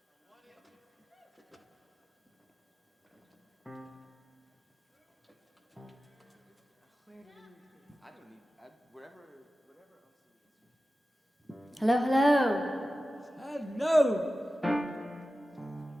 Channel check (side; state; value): both; normal; correlation 0.95